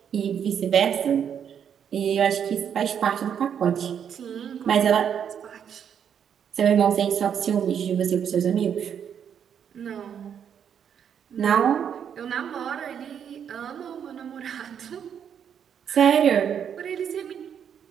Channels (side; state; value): left; quieter; 8.3 dB